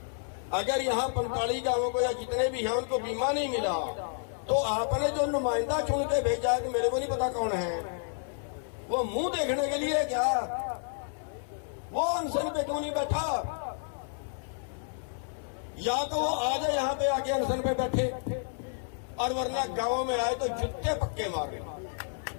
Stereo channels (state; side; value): silent; right; digital silence